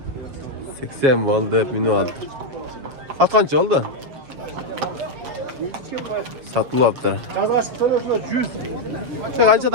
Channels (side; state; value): left; late; 7.1 ms